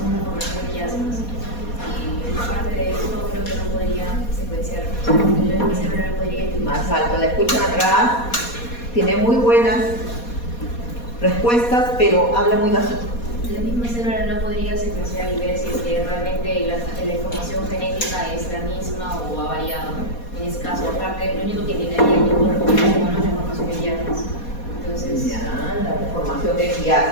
formación de quiasmas. Y aparte de eso, creo que no podría secuenciar. El cerebro no podría identificar. Más alto, la escuchan atrás, tiene muy buenas respuestas, pero habla muy bajito. La misma célula no podría secuenciar y ver si es que realmente la información genética es la misma o ha variado. En ese caso, aparte, lo único que indicaría que el cuerpo es la formación de quiasmas. Entonces, Ya, la formación de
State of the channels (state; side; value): late; right; 4.2 ms